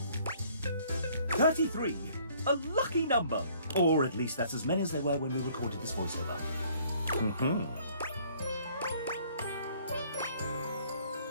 33. A lucky number. Or at least that's as many as there were when we recorded this voiceover.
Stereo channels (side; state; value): both; inverted; correlation -0.60